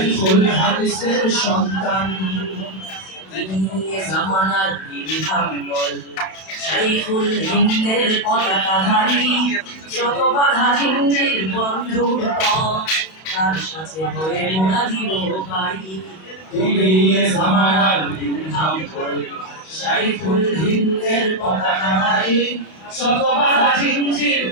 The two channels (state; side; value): late; right; 32 ms